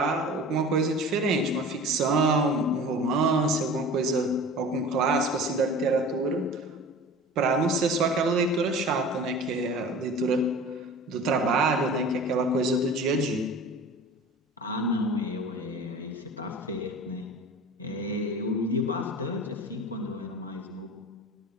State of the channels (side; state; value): both; normal; correlation 0.39